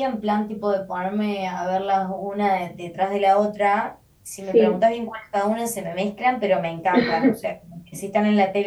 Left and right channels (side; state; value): both; identical; correlation 1.00